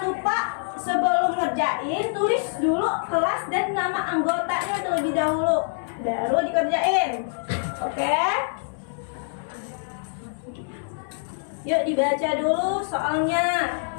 lupa sebelum ngerjain tulis dulu kelas dan nama anggotanya terlebih dahulu, baru dikerjain. Oke? Yuk dibaca dulu soalnya.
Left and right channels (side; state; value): right; silent; digital silence